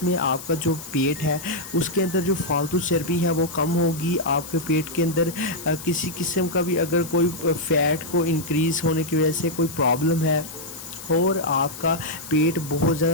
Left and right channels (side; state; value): left; noise; hiss, 13 dB below the sound